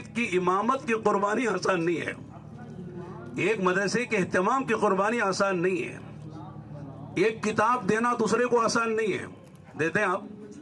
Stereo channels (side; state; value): both; identical; correlation 1.00